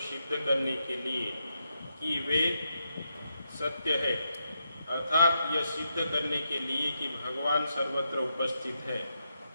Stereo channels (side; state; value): both; inverted; correlation -0.84